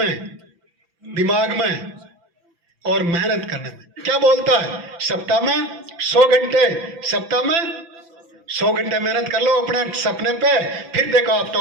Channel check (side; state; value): left; late; 6.0 ms